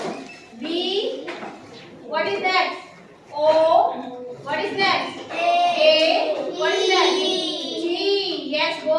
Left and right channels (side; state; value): both; identical; correlation 1.00